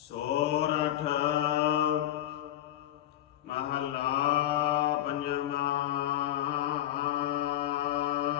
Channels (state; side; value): quieter; right; 12.6 dB